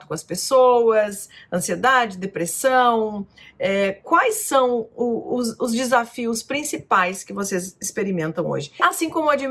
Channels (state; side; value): identical; both; correlation 1.00